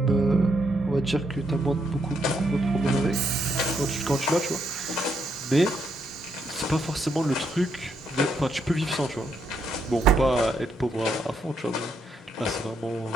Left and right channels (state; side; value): normal; both; correlation 0.77